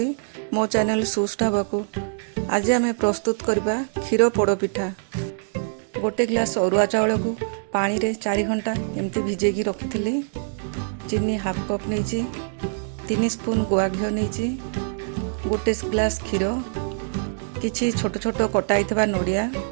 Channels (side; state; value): left; silent; digital silence